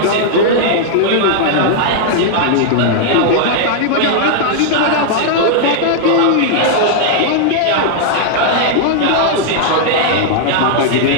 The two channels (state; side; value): different; both; correlation -0.01